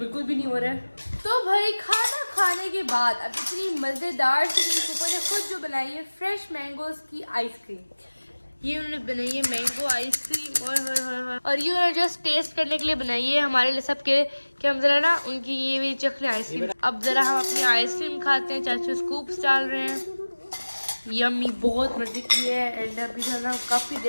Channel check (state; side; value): inverted; both; correlation -1.00